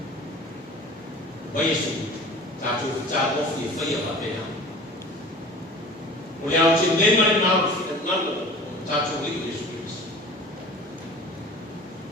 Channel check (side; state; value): both; normal; correlation 0.41